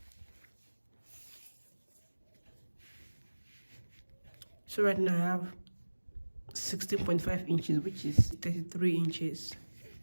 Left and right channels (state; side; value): inverted; both; correlation -1.00